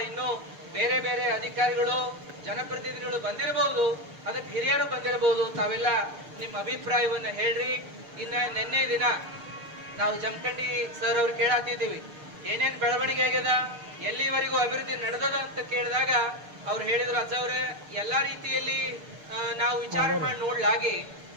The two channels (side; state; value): left; late; 6.7 ms